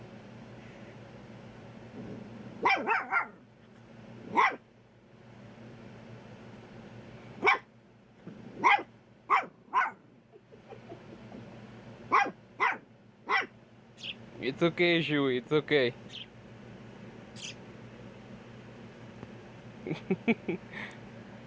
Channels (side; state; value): both; identical; correlation 1.00